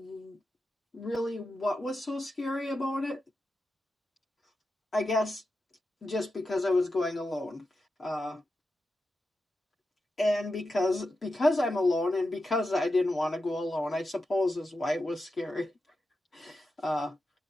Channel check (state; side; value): normal; both; correlation 0.90